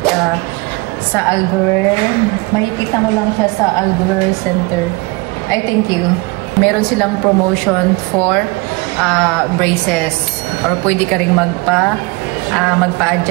sa Albuquerque. Makikita mo lang siya sa Albuquerque Center. I thank you. Meron silang promotion for braces or pwede ka ring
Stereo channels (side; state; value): left; quieter; 25.5 dB